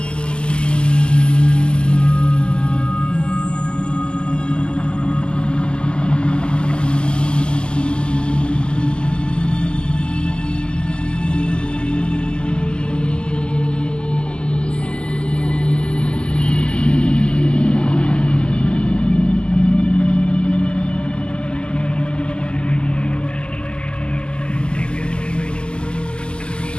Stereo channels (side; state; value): right; late; 0.049 ms